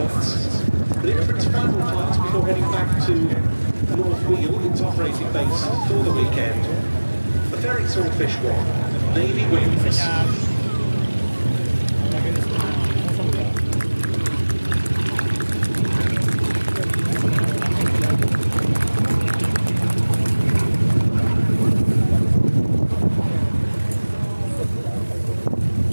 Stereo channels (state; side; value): inverted; both; correlation -1.00